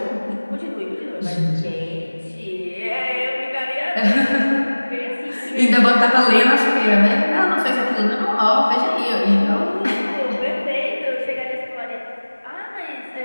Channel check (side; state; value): both; inverted; correlation -1.00